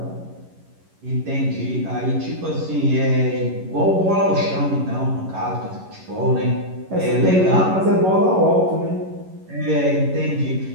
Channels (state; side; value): late; left; 11 ms